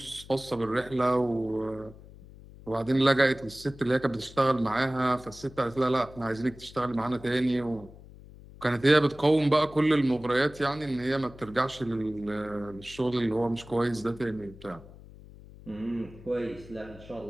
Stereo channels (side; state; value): left; noise; hum, 19 dB below the sound